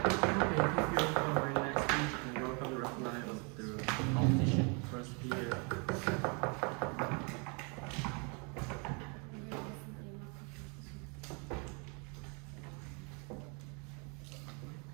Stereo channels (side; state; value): left; quieter; 34.2 dB